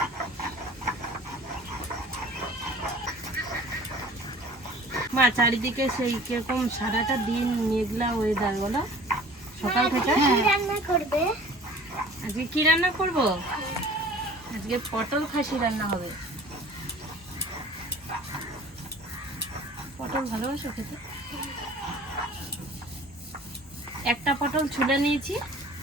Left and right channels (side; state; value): both; normal; correlation 0.47